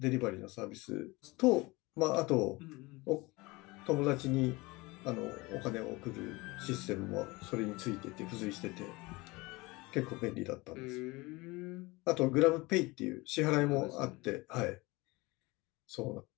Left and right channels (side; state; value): right; quieter; 23.2 dB